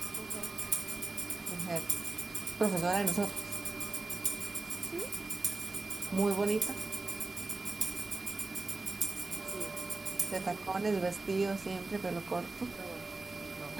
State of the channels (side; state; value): left; quieter; 3.4 dB